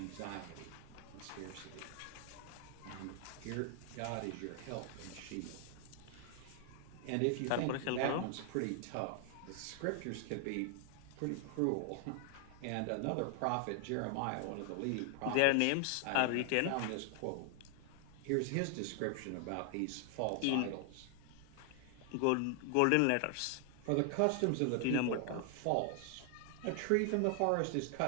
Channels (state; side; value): different; both; correlation 0.00